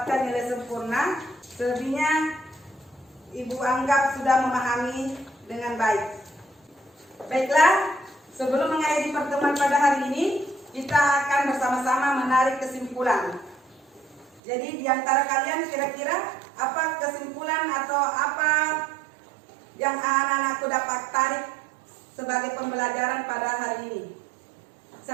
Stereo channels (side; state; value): left; drops out; at 14.4 s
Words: nilai sempurna. Selebihnya Ibu anggap sudah memahami dengan baik. Baiklah, sebelum mengakhiri pertemuan pada hari ini, kita kita akan bersama-sama menarik kesimpulan. Jadi di antara kalian kira-kira apa kesimpulan atau apa yang anak-anakku dapat tarik sebagai pembelajaran pada hari ini?